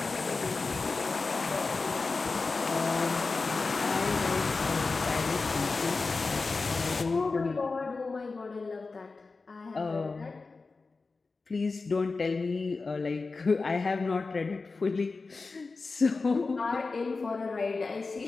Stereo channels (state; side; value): quieter; right; 4.0 dB